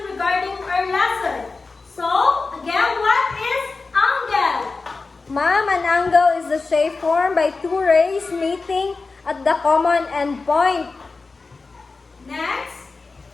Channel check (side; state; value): right; quieter; 4.0 dB